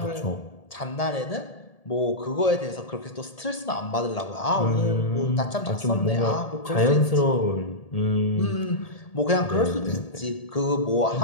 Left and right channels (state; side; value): late; right; 1.8 ms